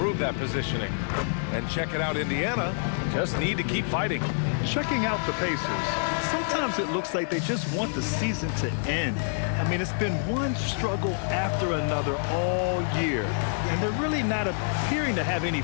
that positioning. And check it out, Indiana just need to keep fighting. Checking out the Pacers, sometimes it looks like they just want the season to end. I mean, it's been one struggle after another all year, and they're really not appearing to have any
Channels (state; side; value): silent; right; digital silence